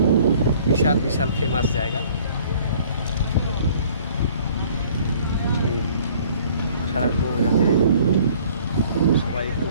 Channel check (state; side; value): inverted; both; correlation -0.55